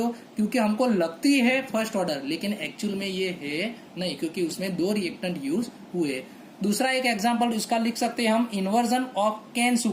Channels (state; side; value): identical; both; correlation 1.00